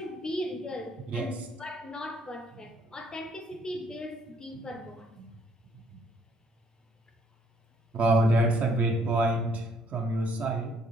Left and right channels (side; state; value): both; normal; correlation 0.66